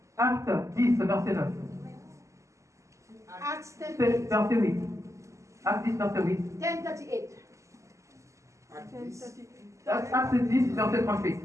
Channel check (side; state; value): left; late; 0.15 ms